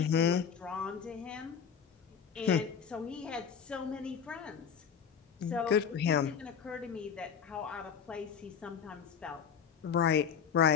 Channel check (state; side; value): quieter; right; 7.3 dB